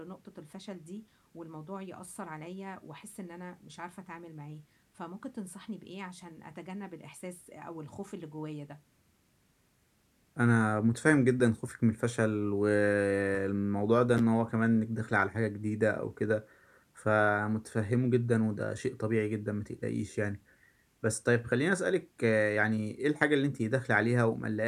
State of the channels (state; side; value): identical; both; correlation 1.00